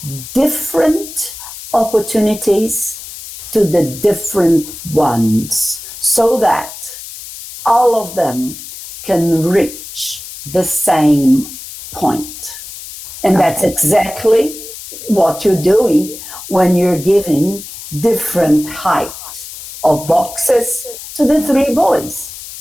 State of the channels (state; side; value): noise; left; hiss, 13 dB below the sound